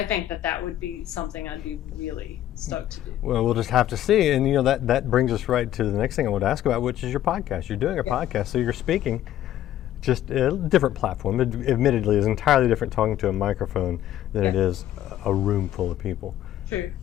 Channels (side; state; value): right; quieter; 12.4 dB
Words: think that would be something I'd be really stoked to do. Well, we'll just have to see. And that brings us right to the next thing I want to ask about, which is your podcast. You're doing a podcast, so you're speaking. Just a different platform. Admittedly, it's entirely different talking to a microphone than it is a room full of people. True.